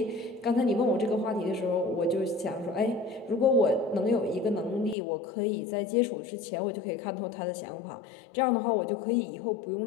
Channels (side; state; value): right; drops out; at 5.0 s